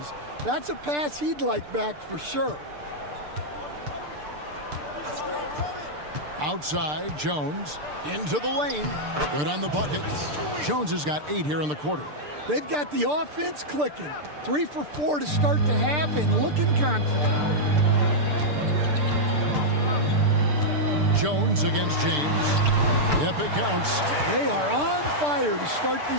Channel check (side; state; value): left; late; 6.7 ms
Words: That's a pass he'd like back for sure. Outside, Jones. Into the lane. Good on the bucket. Jones has got 8 here in the quarter. They've got the offense clicking. 3 for 4 to start the half and looking confident. Jones against James. Yep, it counts. They are on fire to start